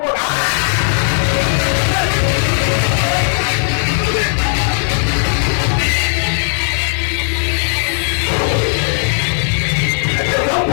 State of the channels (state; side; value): silent; right; 63 dB below the other